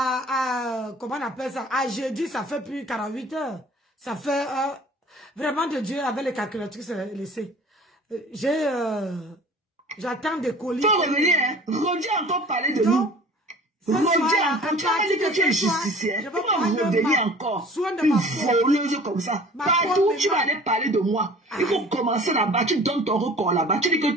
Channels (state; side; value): normal; both; correlation 0.46